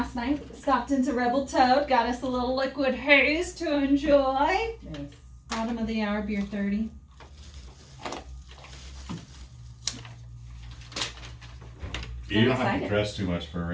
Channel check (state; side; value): identical; both; correlation 1.00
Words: night stopped into Rebel Toad, got us a little liquid haze to enjoy. Nice. Bottom of the hour, beer 30. You don't have excited. to dress too much for